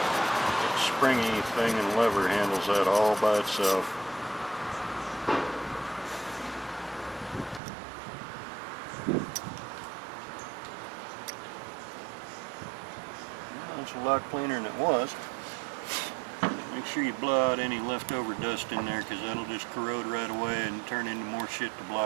It's springy thing and lever handles that all by itself. Well, it's a lot cleaner than it was. Make sure you blow out any leftover dust in there, because that'll just corrode right away and turn into more shit to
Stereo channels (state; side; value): drops out; left; at 7.6 s